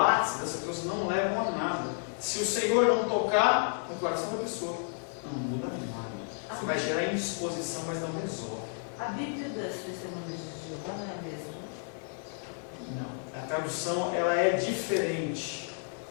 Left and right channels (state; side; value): silent; right; 57 dB below the other